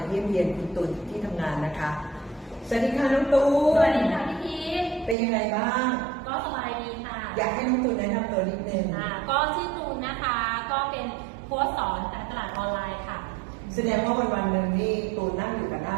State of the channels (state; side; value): drops out; left; at 5.2 s